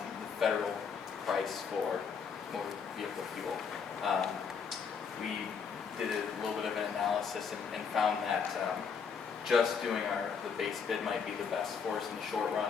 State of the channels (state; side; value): quieter; right; 6.2 dB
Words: the federal price for motor vehicle fuel. We did a little bit of an analysis and found that just doing the base bid might be the best for us in the short